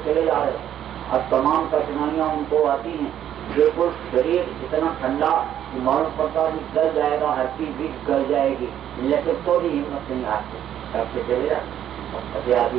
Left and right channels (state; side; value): quieter; left; 10.6 dB